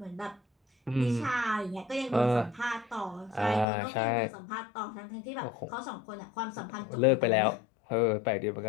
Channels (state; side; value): drops out; right; at 3.7 s